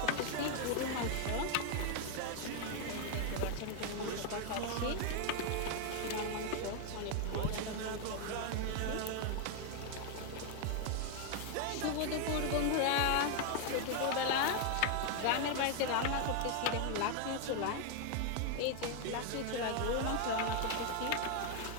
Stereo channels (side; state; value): both; different; correlation 0.00